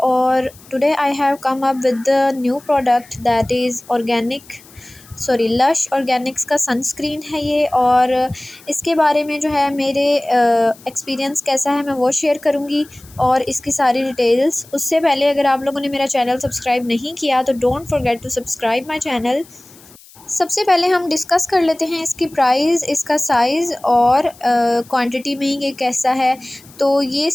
today I have come up with the new product that is lush Organics का sunscreen है ये। और इसके बारे में जो है मेरे एक्सपीरियंस कैसा है मैं वो शेयर करूँगी और इसकी सारी डिटेल्स। उससे पहले अगर आप लोगों ने मेरा चैनल सब्सक्राइब नहीं किया तो don't forget to subscribe my channel. सबसे पहले हम डिस्कस कर लेते हैं इसकी प्राइस, इसका साइज़ और क्वांटिटी में ये कैसा है। तो ये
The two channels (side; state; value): left; noise; hiss, 24 dB below the sound